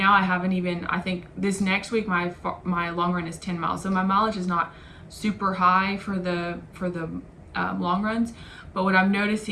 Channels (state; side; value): identical; both; correlation 1.00